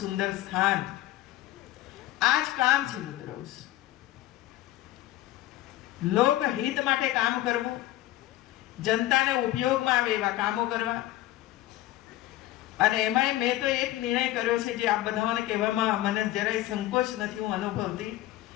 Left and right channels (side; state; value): right; quieter; 15.6 dB